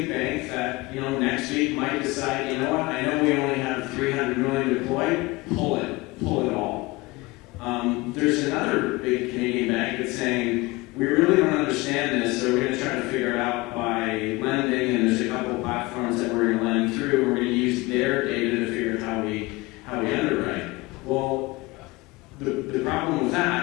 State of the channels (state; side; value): quieter; right; 22.4 dB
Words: bank that, next week might decide, I know we only have $300 million deployed, pull it all. There's another big Canadian bank that's saying, we really don't understand this, so we're going to try to figure it out by lending, and there's a couple of platforms that we're going to lend through. We're going to use their data to figure out how we underwrite. Well, the problem with